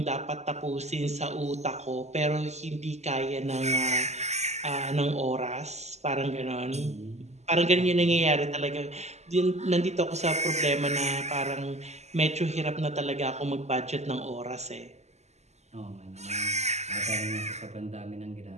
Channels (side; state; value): left; late; 0.33 ms